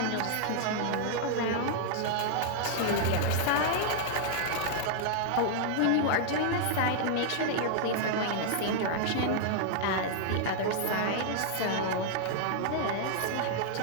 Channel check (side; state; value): both; different; correlation -0.01